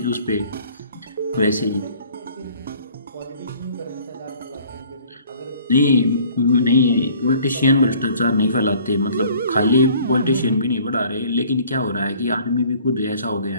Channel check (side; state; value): both; inverted; correlation -0.54